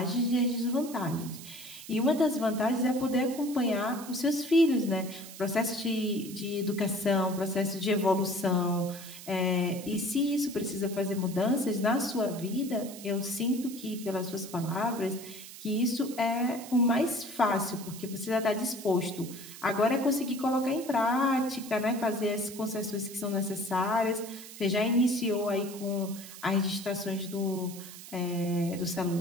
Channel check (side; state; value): right; noise; hiss, 14 dB below the sound